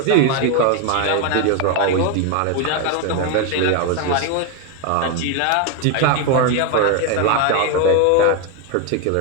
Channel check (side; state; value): both; different; correlation 0.01